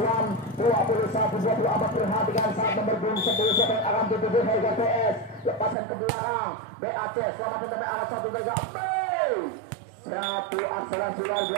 21 24 perhatikan saat nomor 10 siapa yang akan dituju Harga PS. Lepasan ke belakang BAC selamat sampai angkat 1 2 3. Satu akselerasi luar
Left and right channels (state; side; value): drops out; left; at 5.8 s